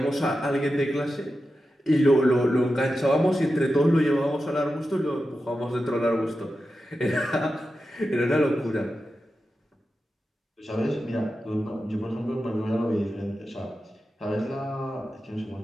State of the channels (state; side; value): normal; both; correlation 0.91